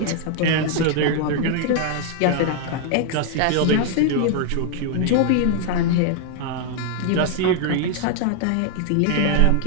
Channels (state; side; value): different; both; correlation 0.00